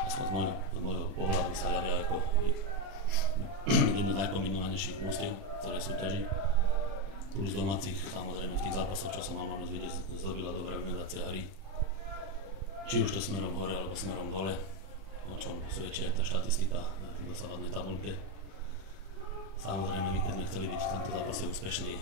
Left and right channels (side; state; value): left; late; 31 ms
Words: z môjho pohľadu, sa javia ako jedno z najkombinovanejších mústiev celej súťaži. Plus domácich, samozrejme v tých zápasoch, čo som mal možnosť vidieť, zdobila dobrá organizácia hry. Či už to smerom hore alebo smerom dole, o čom svedčí aj tá štatistika v dosávadnej tabuľke. Samozrejme, my keď sme chceli byť v tomto zápase úspešní,